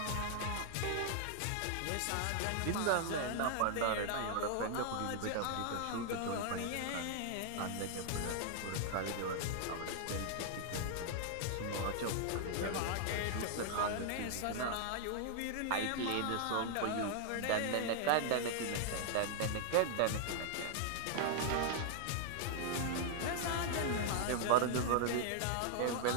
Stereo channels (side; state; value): both; different; correlation 0.00